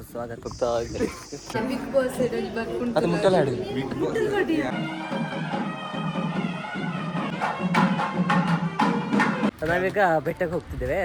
ಬಿಗ್ ಬಾಸ್ ಅದು ಮುಟ್ಟಲ್ಲ ಹಾಡಿ. ನಾವೀಗ ಬೆಟ್ಟಕ್ಕೆ ಹೋಗ್ತಿದ್ದೇವೆ.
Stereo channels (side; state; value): both; identical; correlation 1.00